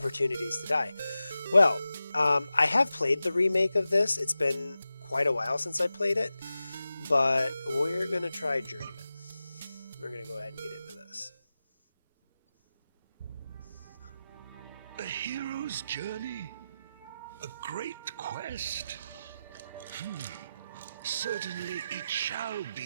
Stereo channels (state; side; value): inverted; both; correlation -0.93